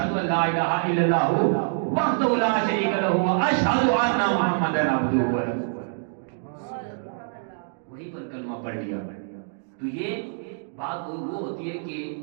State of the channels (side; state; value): left; silent; digital silence